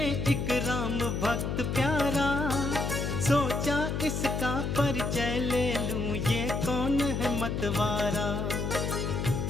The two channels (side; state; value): left; noise; hum, 1 dB below the sound